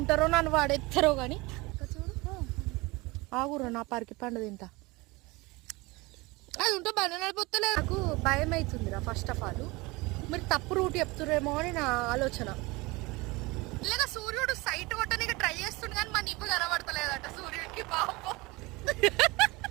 నన్ను వాడెత్తారో కానీ ఆగురు నా పరికి పండు తింటా. అది ఉంటే బండి నడిపోతలేదు, నాకు భయం అవుతుందిరా. ఫస్ట్ ఆఫ్ ఆల్ మీరు తప్పు రూట్ చెప్తురేమో అని నా ఆలోచన. ఇలాగా సూర్యుడు సైట్ కొట్టడానికి ట్రై చేస్తుండే కానీ మన ఇవ్వ కనబడతలేదట సూర్యుడికి. పాపం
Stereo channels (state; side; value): quieter; left; 23.6 dB